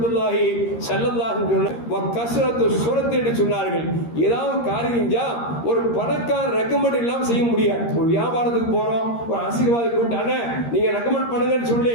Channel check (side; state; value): right; late; 13 ms